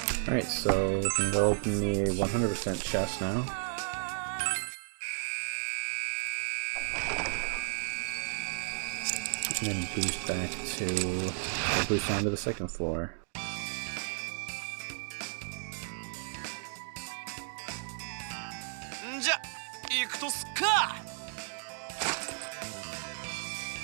Alright, so we can go open the 100% chest now. And then boost back to, or boost down to the second floor.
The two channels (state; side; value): silent; left; digital silence